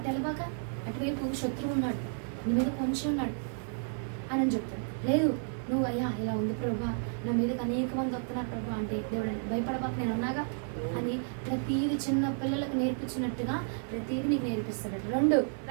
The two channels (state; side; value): silent; left; 57 dB below the other